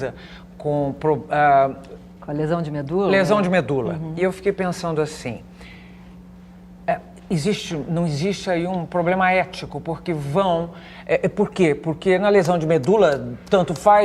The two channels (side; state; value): both; identical; correlation 1.00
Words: com a lesão de medula? Lesão de medula. E eu fiquei pensando assim, não existe aí um problema ético, porque por quê? Porque na lesão de medula, tanto